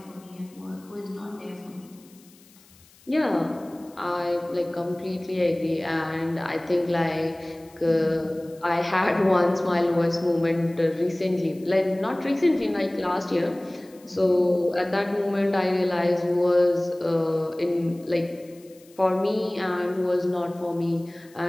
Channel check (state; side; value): noise; left; hiss, 27 dB below the sound